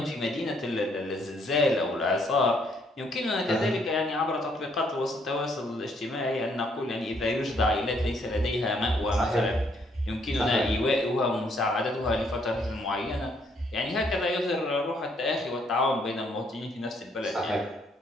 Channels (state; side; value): normal; both; correlation 0.69